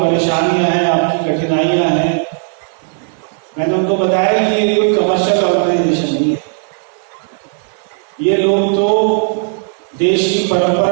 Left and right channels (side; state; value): left; silent; digital silence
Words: हैं, आपकी कठिनाइयां हैं, मैंने उनको बताया कि ये कोई कमर्शियल ऑर्गेनाइजेशन नहीं है। ये लोग तो देश की